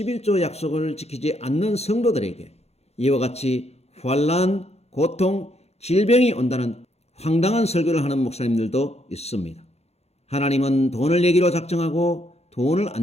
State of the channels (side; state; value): right; late; 0.31 ms